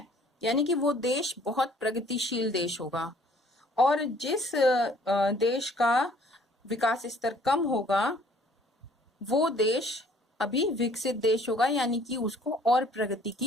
यानी कि वो देश बहुत प्रगतिशील देश होगा। और जिस देश का विकास स्तर कम होगा वो देश अभी विकसित देश होगा, यानी कि उसको और प्रगति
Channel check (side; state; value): both; normal; correlation 0.57